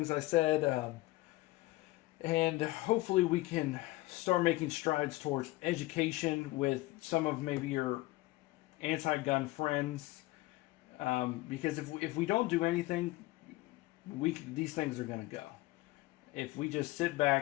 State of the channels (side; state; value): right; quieter; 19.3 dB